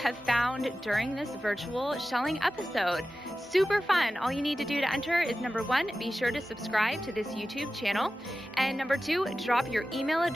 found during this virtual shelling episode. Super fun. All you need to do to enter is number 1, be sure to subscribe to this YouTube channel. And number 2, drop your email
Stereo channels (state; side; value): normal; both; correlation 0.94